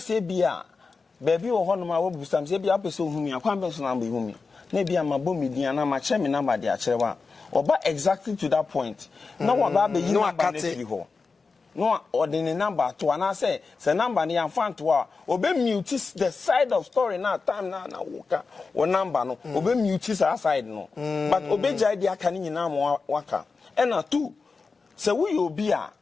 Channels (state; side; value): quieter; right; 4.5 dB